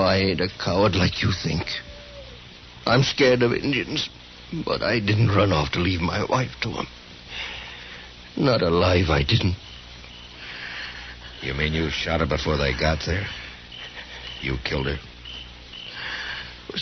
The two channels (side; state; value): both; identical; correlation 1.00